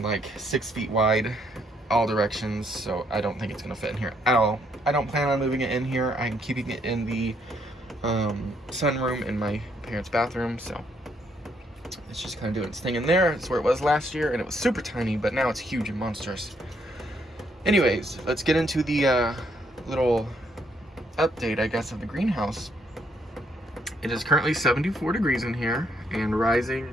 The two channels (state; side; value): normal; both; correlation 0.72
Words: like 6 feet wide all directions, so I don't think it's gonna fit in here at all. I don't plan on moving it in here. I'm keeping it in the sunroom in my parents' bathroom, so it's just kind of doing its thing in there. It's where it was last year, and it was super tiny, but now it's huge and monstrous. Anyways, let's get into the little update, I guess, of the greenhouse. It is currently 74 degrees in here and rising